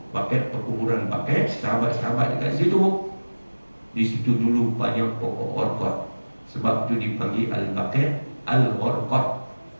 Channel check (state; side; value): inverted; both; correlation -1.00